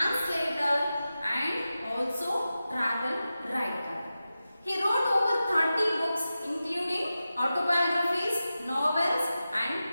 and also travel writer. He wrote over 30 books including autobiographies, novels and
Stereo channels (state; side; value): inverted; both; correlation -0.93